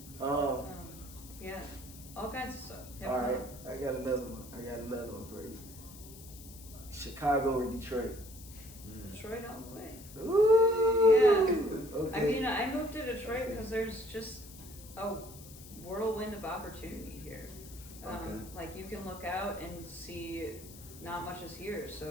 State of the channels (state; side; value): noise; left; hiss, 17 dB below the sound